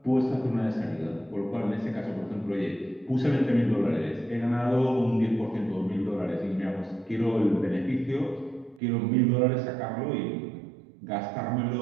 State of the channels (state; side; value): drops out; left; at 8.8 s